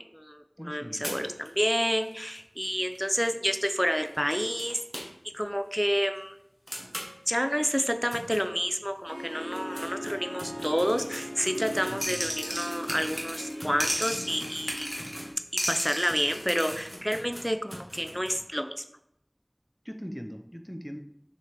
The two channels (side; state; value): both; identical; correlation 1.00